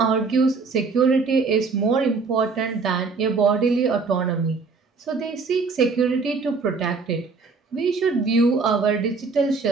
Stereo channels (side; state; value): left; quieter; 4.5 dB